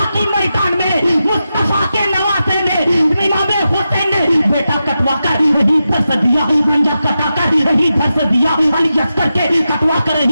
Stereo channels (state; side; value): inverted; both; correlation -0.90